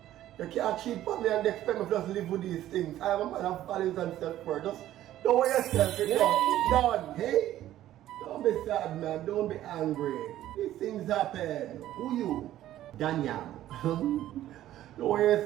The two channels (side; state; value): left; quieter; 13.3 dB